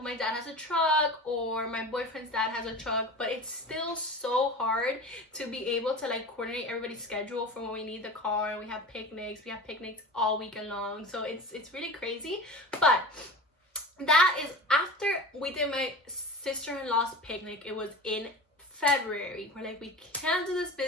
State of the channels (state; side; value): normal; both; correlation 0.33